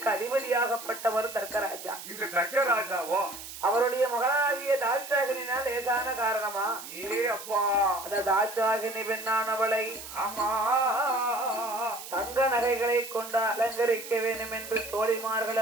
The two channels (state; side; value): noise; right; hiss, 12 dB below the sound